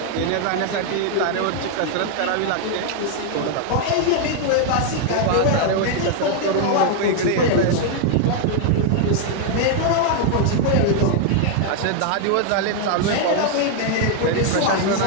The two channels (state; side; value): different; both; correlation 0.00